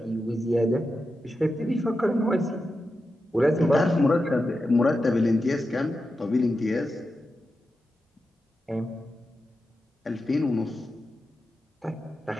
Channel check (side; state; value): both; normal; correlation 0.89